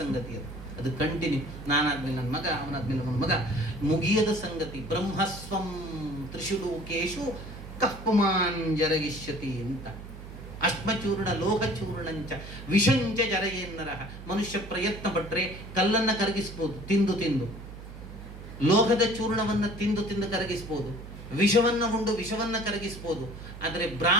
ಅದು ಕಂಟಿನ್ಯೂ, ನಾನಾದ್ಮೇಲೆ ನನ್ನ ಮಗ, ಅವನಾದ್ಮೇಲೆ ನನ್ನ ಮಗ, ಮುಗಿಯದ ಸಂಗತಿ. ಬ್ರಹ್ಮಸ್ವಂ ತ್ರಿಶುಲೋಕೇಶು ಕಪ್ಪುಮಾನ್ ಜರಗಿಷ್ಯತಿ ಅಂತ. ಅಶ್ಮಚೂರ್ಣ ಲೋಹಚೂರ್ಣಂಚ ವಿಷಂಚ ಜರಯೇನ್ನರ. ಮನುಷ್ಯ ಪ್ರಯತ್ನ ಪಟ್ರೆ ಕಲ್ಲನ್ನ ಕರಗಿಸ್ಬೋದು, ತಿಂದು ತಿಂದು. ಲೋಹದ ಚೂರ್ಣವನ್ನ ತಿಂದು ತಿಂದು ಕರಗಿಸ್ಬೋದು, ವಿಷವನ್ನ ಉಂಡು ವಿಷವನ್ನ ಕರಗಿಸ್ಬೋದು. ಆದರೆ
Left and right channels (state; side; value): noise; right; hum, 13 dB below the sound